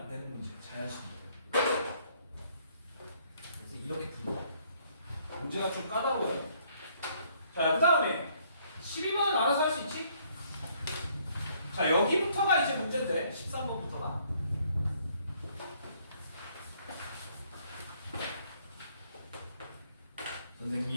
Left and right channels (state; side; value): inverted; both; correlation -0.65